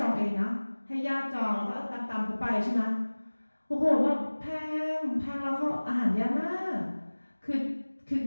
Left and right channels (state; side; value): inverted; both; correlation -1.00